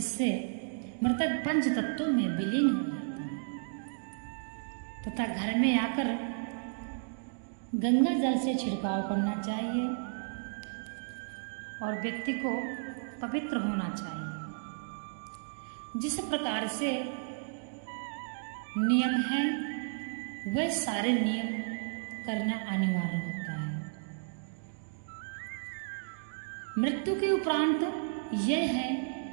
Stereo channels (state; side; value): silent; left; digital silence